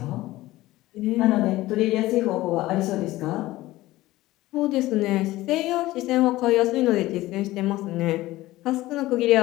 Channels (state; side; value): quieter; right; 17.3 dB